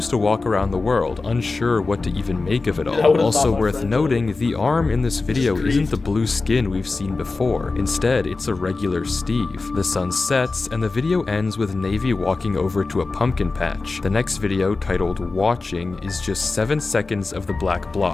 to walk around the world, unsure what to even make of it I all. would've Also thought my worth friend noting, the arm in this video grief. isn't the blue skin we've seen before. Instead, it's a regular Steve. The sun sets, and the video ends with Navy walking over to a pumpkin patch. The next video, titled Watching, is just 7 seconds of the black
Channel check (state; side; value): quieter; right; 3.7 dB